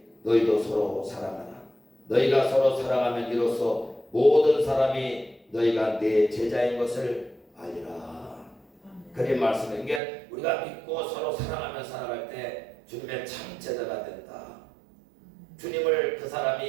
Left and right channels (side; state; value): left; drops out; at 10.0 s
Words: 너희도 서로 사랑하라. 너희가 서로 사랑하면 이로써 모든 사람이 너희가 내 제자인 것을 알리라. 그런 말씀에 이게 우리가 믿고 서로 사랑하며 살아갈 때 주님의 참 제자가 된다. 주님을 그